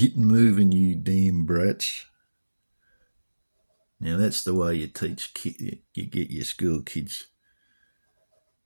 moving, you damn brats. Now that's the way you teach you get your school kids.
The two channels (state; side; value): inverted; both; correlation -1.00